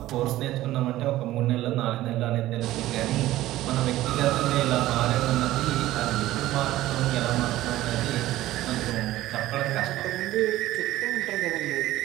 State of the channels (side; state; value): left; quieter; 15.5 dB